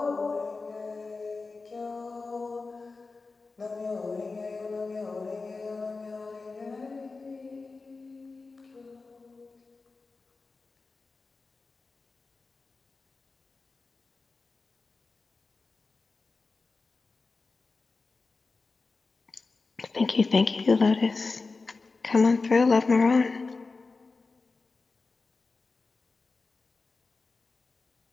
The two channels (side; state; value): right; quieter; 4.0 dB